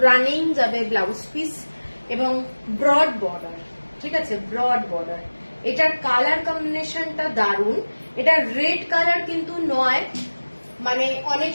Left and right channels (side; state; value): both; inverted; correlation -1.00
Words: রানিং যাবে ব্লাউজ পিস, এবং ব্রড বর্ডার। ঠিক আছে, ব্রড বর্ডার। এটার কালার কম্বিনেশনটা দারুণ। এটা রেড কালার কিন্তু নয়, মানে অনেক